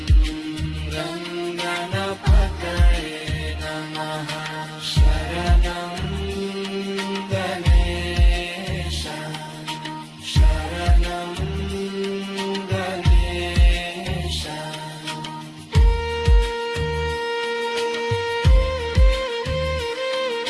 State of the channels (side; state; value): both; identical; correlation 1.00